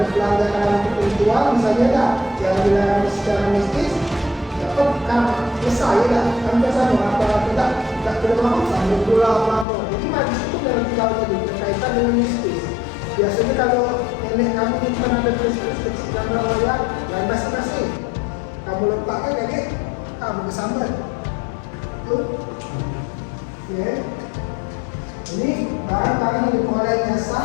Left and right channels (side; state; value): right; drops out; at 9.7 s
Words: pelanggaran ketentuan misalnya tak yang dilarang secara mistis dapat kan selesai tak kan biasa apa tidak berlaku sambil pula apa jadi magis itu dalam tinggal tadi berkaitan dengan mistis. Biasanya kalau nenek kamu nyimpan ada tulis-tulis kecil gambar wayang dan masing-masing kamu letakkan kayak kamu kesambar itu ya. Ini barang-barang yang diperoleh jasa